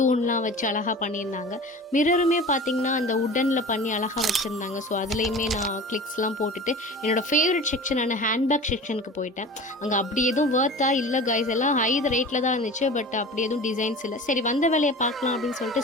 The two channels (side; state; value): both; normal; correlation 0.37